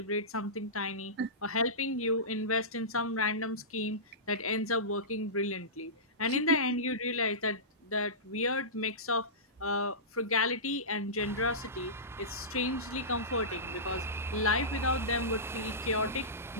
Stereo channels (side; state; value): both; normal; correlation -0.20